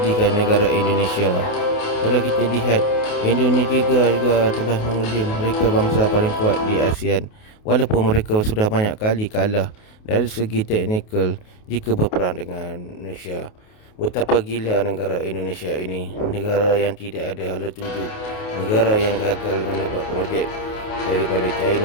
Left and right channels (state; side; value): late; right; 28 ms